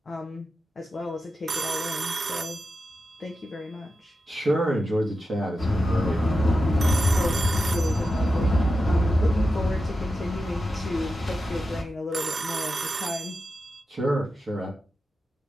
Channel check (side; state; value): both; normal; correlation 0.90